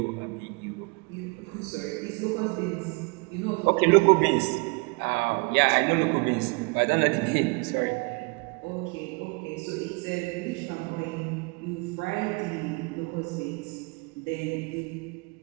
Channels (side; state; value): left; quieter; 29.6 dB